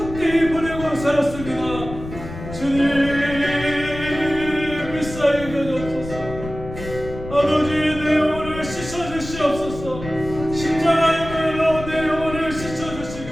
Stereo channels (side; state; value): left; noise; rumble, 11 dB below the sound